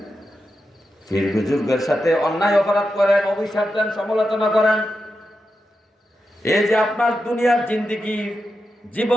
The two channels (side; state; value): both; normal; correlation 0.88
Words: ফির বুজুর্গের সাথে অন্যায় অপরাধ করেন, অভিশাপ দেন, সমালোচনা করেন। এই যে আপনার দুনিয়ার জিন্দেগি